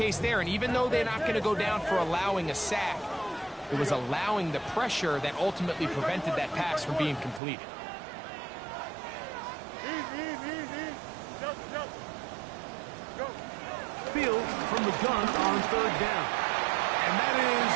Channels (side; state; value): left; drops out; at 7.4 s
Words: there. And even though they're not going to go down for allowing a sack, it was allowing the pressure that ultimately prevented that pass from being completed. Easy. Jump. Go. Field from the gun on 3rd down. And that